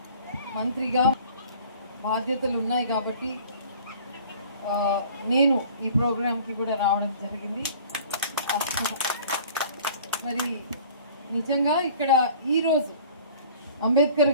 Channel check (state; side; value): inverted; both; correlation -0.48